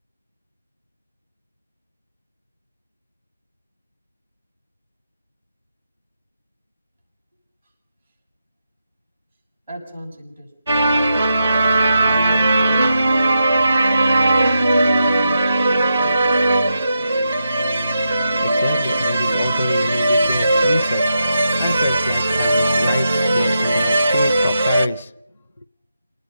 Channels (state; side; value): inverted; both; correlation -0.86